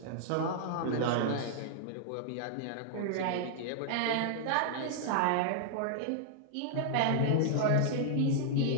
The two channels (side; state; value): both; different; correlation -0.01